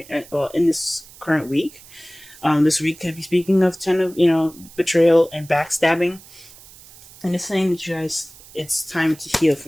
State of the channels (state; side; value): noise; right; hiss, 21 dB below the sound